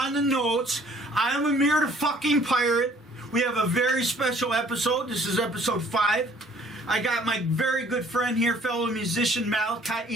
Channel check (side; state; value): both; normal; correlation 0.57